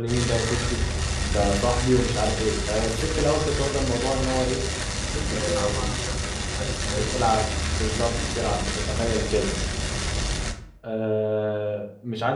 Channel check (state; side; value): identical; both; correlation 1.00